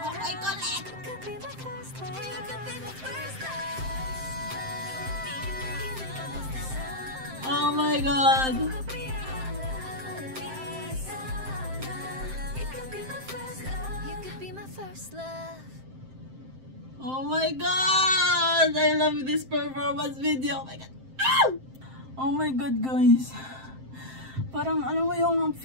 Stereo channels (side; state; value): left; late; 7.7 ms